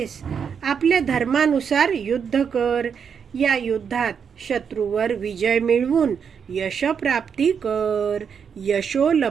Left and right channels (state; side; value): quieter; left; 6.9 dB